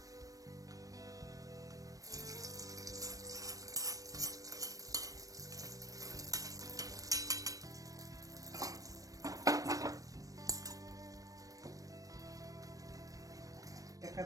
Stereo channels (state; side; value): late; left; 0.16 ms